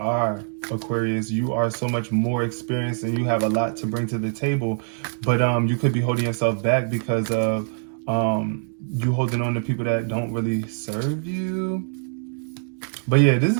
Aquarius. You are so much more experienced and you have a lot to bring to the table. But you could be holding yourself back because of you holding on to people that don't really serve you. But yeah, this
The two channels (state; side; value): silent; left; digital silence